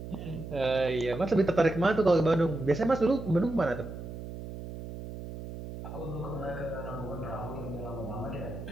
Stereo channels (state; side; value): noise; right; hum, 10 dB below the sound